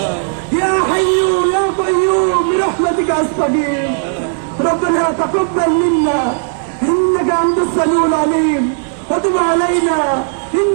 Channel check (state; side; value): silent; left; digital silence